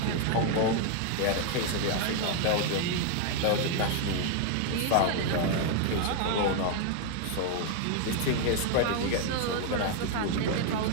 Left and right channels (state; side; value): different; both; correlation 0.00